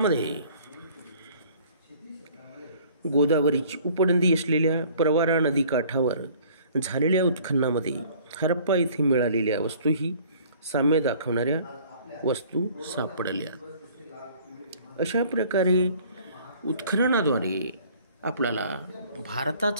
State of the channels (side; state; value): both; inverted; correlation -0.53